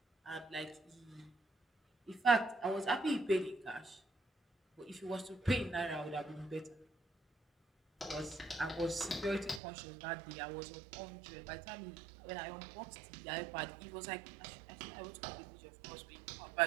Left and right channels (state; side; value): drops out; left; at 9.6 s